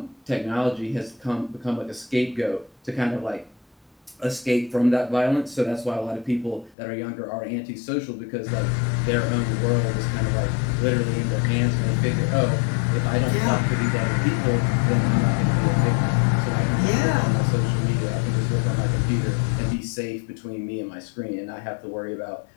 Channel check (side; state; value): right; drops out; at 6.8 s